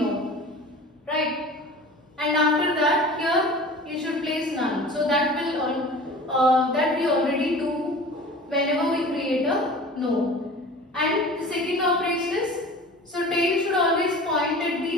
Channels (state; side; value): normal; both; correlation 0.40